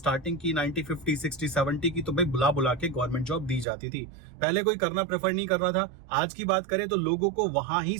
की 90, 50, 60, 70 की, तो भाई बुला के गवर्नमेंट जॉब दी जाती थी। पहले कोई करना प्रेफर नहीं कर रहा था। आज की बात करें तो लोगों को वहां ही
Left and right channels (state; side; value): drops out; left; at 3.7 s